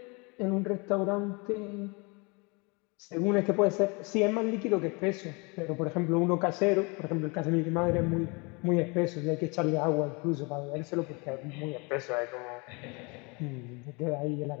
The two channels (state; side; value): quieter; right; 29.7 dB